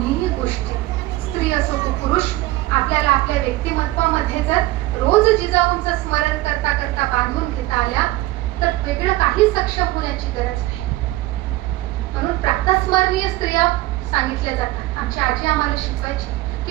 गोष्टी स्त्री असो की पुरुष आपल्याला आपल्या व्यक्तिमत्वामध्ये जर रोज जिजाऊंचं स्मरण करता करता बांधून घेता आल्या तर वेगळं काही सक्षम होण्याची गरज नाही. म्हणून प्रातस्मरणीय स्त्रिया सांगितल्या जातात. आमची आजी आम्हाला शिकवायची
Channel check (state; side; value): quieter; left; 17.9 dB